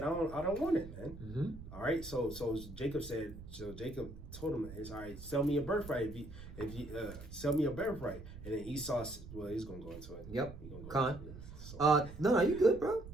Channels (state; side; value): noise; right; rumble, 13 dB below the sound